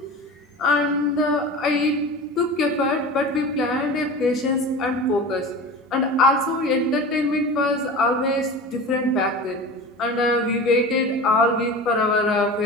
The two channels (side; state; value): both; normal; correlation 0.33